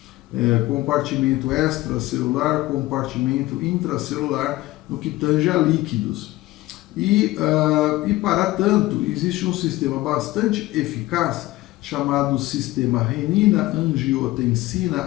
compartimento extracelular, compartimento intracelular, no que tange a líquidos. E para tanto, existe um sistema bastante eficaz chamado sistema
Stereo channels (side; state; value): right; quieter; 18.1 dB